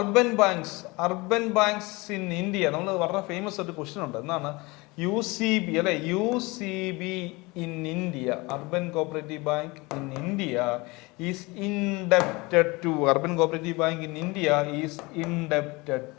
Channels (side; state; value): right; quieter; 24.4 dB